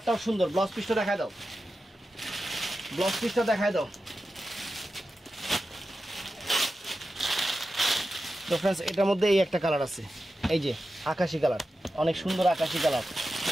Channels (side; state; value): both; normal; correlation 0.92